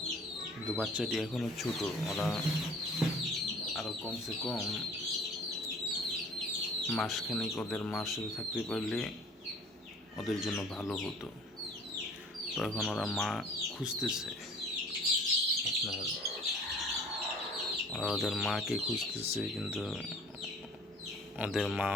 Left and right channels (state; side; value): normal; both; correlation 0.50